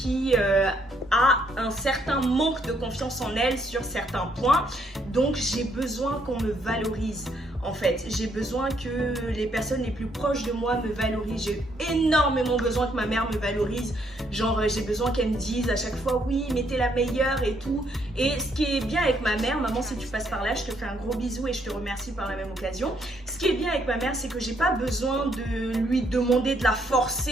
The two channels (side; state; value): both; normal; correlation 0.71